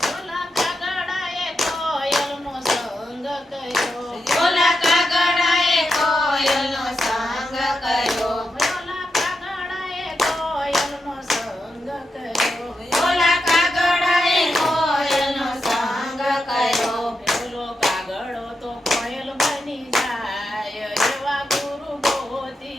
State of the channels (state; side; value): normal; both; correlation 0.87